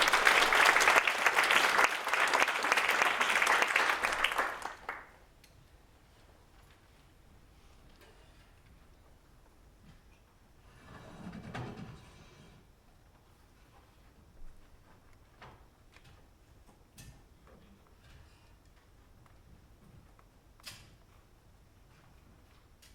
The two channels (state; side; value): identical; both; correlation 1.00